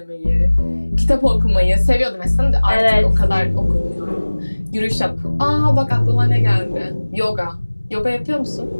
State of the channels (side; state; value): both; inverted; correlation -1.00